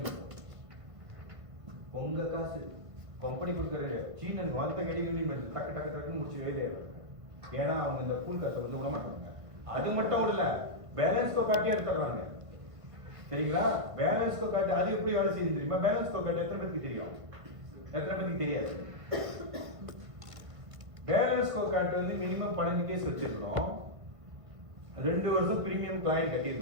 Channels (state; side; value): late; left; 1.5 ms